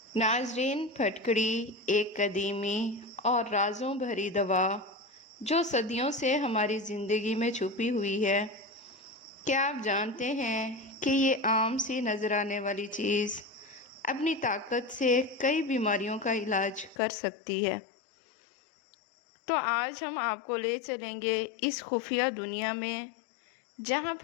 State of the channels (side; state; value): right; drops out; at 16.9 s